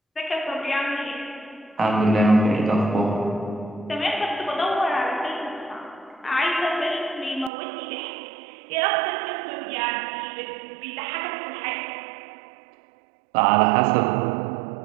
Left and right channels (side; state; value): left; drops out; at 7.5 s